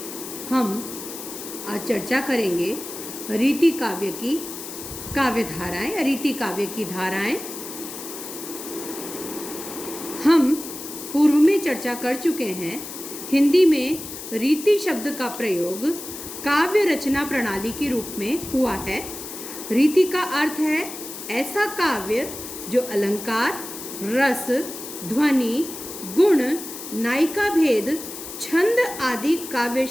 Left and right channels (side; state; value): left; noise; hiss, 10 dB below the sound